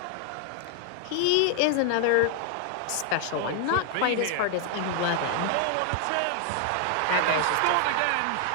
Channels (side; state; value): both; different; correlation 0.00